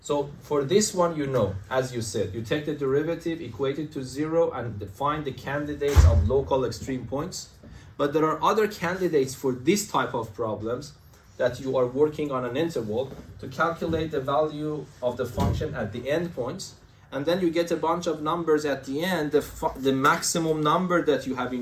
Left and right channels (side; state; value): both; identical; correlation 1.00